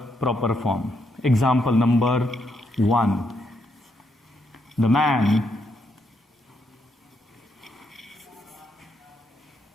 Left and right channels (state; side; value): normal; both; correlation 0.78